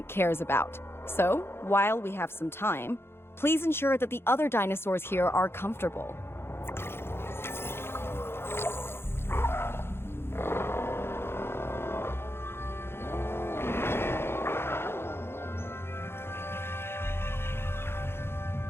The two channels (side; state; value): right; late; 0.11 ms